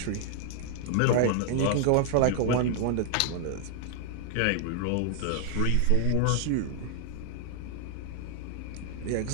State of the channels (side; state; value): both; different; correlation 0.00